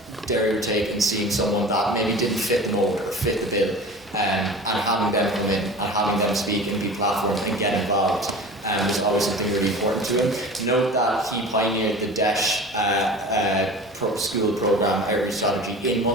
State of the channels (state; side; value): normal; both; correlation 0.37